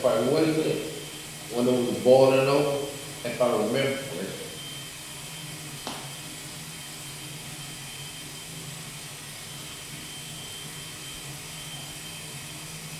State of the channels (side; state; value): both; identical; correlation 1.00